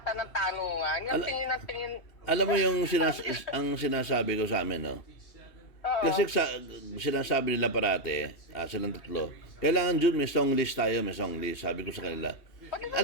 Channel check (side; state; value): right; late; 2.7 ms